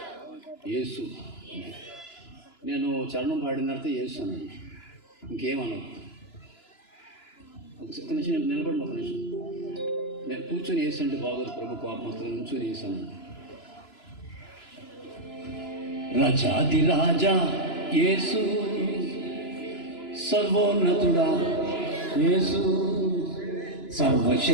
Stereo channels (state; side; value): late; right; 2.9 ms